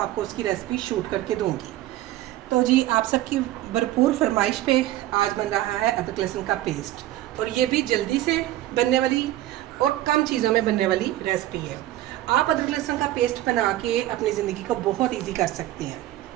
उसकी रेसिपी शूट करके दूँगी। तो जी आप सबकी भरपूर फरमाइश पे आज बन रहा है अदरक लहसुन का पेस्ट, और ये भी जल्दी से बनने वाली और कम चीज़ों में बनने वाली रेसिपी है। आप अदरक लहसुन का पेस्ट बना के अपनी ज़िंदगी को बहुत इजी कर सकते हैं।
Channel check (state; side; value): quieter; left; 14.6 dB